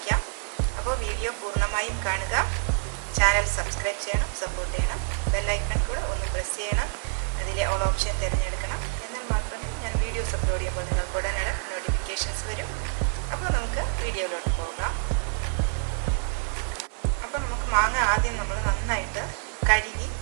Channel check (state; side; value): silent; left; 59 dB below the other